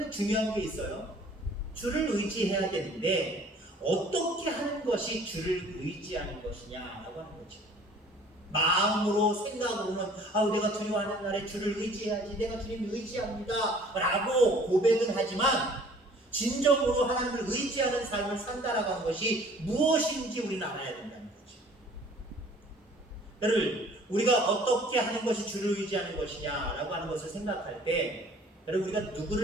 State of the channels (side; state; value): both; normal; correlation 0.52